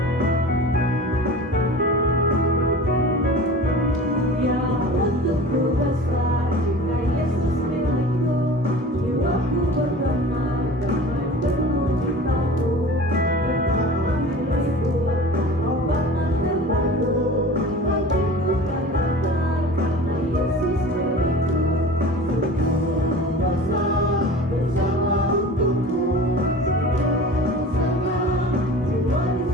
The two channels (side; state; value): both; normal; correlation 0.39